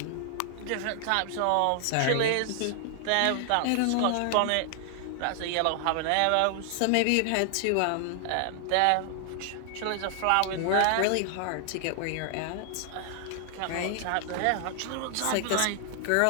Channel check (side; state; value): both; different; correlation 0.00